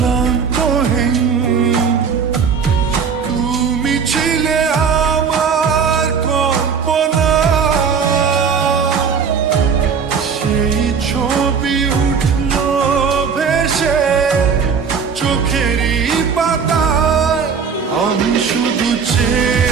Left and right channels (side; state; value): left; quieter; 6.2 dB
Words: তুমি ছিলে আমার কল্পনা। সেই ছবি উঠলো ভেসে চোখেরই পাতায়। আমি শুধু